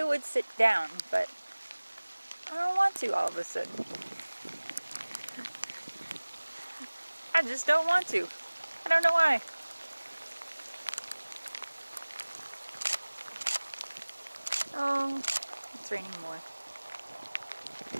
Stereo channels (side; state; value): both; inverted; correlation -1.00